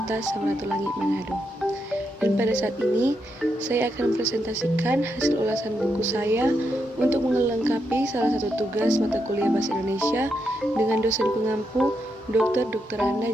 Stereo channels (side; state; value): both; normal; correlation 0.82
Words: Samratulangi, Manado. Dan pada saat ini, saya akan mempresentasikan hasil ulasan buku saya untuk melengkapi salah satu tugas mata kuliah Bahasa Indonesia dengan dosen pengampu Dr. Randa